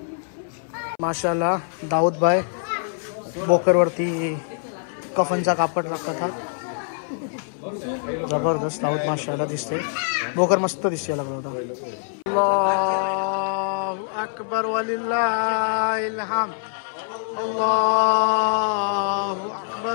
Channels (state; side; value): silent; right; 61 dB below the other